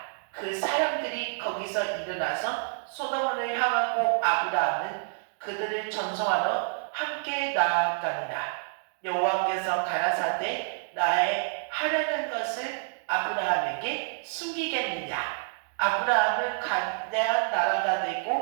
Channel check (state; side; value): silent; left; digital silence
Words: 그 사람들이 거기서 일어나서 소돔을 향하고 아브라함은 그들을 전송하러 함께 나아가니라. 여호와께서 가라사대 나의 하려는 것을 아브라함에게 숨기겠느냐? 아브라함은 거대한 나라가